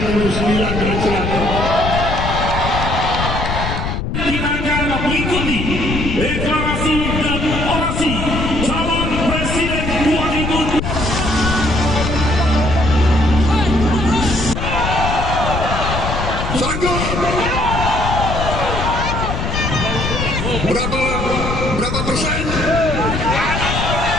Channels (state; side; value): noise; left; rumble, 3 dB below the sound